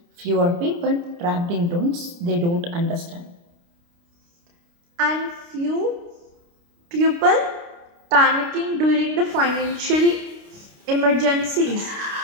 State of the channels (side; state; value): left; late; 29 ms